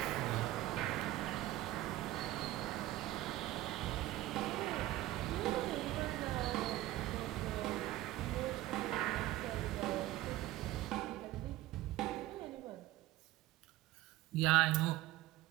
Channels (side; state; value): left; quieter; 16.0 dB